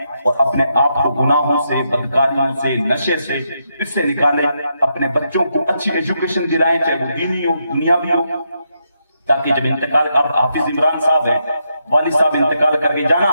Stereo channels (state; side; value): inverted; both; correlation -0.81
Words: اپنے آپ کو گناہوں سے، بدکاریوں سے، نشے سے اس سے نکالیں، اپنے بچوں کو اچھی ایجوکیشن دلائیں، چاہے وہ دینی ہو دنیاوی ہو، تاکہ جب انتقال، اب حافظ عمران صاحب ہیں، والد صاحب انتقال کر کے جانا